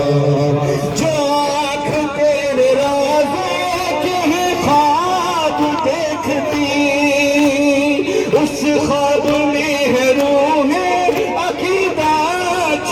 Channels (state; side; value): identical; both; correlation 1.00